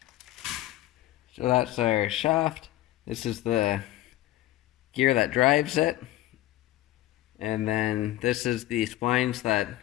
So that's our shaft. This is the gear that drives it. And then this is the splines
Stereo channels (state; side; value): quieter; right; 15.5 dB